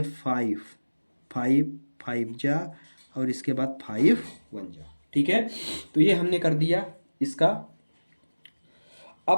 5 5 5 जा, और इसके बाद 5 1 जा, ठीक है। तो ये हमने कर दिया इसका।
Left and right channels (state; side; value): inverted; both; correlation -1.00